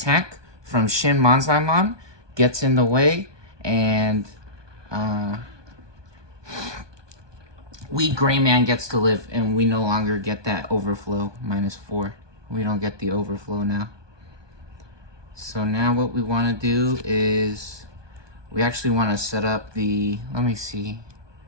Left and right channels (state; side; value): late; left; 1.2 ms